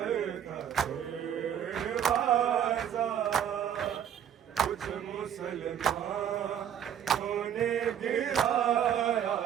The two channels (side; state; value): left; quieter; 9.4 dB